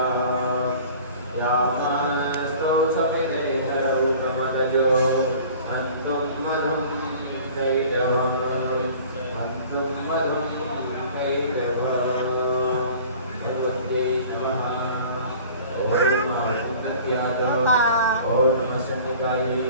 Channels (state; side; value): inverted; both; correlation -0.46